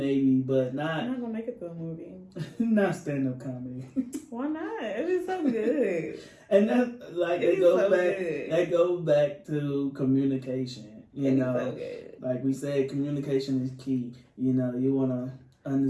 but not. I'm not gonna make it to a movie. Not stand-up comedy. Why not? It is so good. And that, like, that goes back to communication. So like we said, communication is key. You wanna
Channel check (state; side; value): identical; both; correlation 1.00